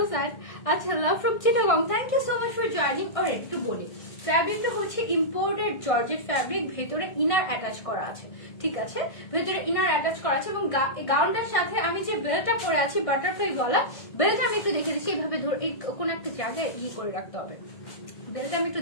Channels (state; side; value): late; right; 1.6 ms